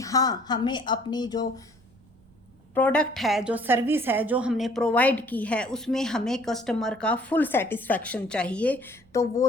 हाँ, हमें अपनी जो प्रोडक्ट है, जो सर्विस है, जो हमने प्रोवाइड की है, उसमें हमें कस्टमर का फुल सेटिस्फैक्शन चाहिए। तो वो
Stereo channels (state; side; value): noise; right; rumble, 29 dB below the sound